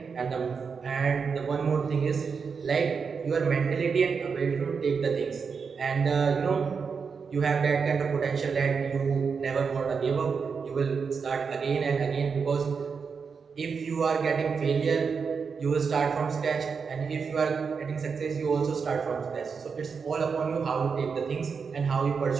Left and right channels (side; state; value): left; quieter; 5.7 dB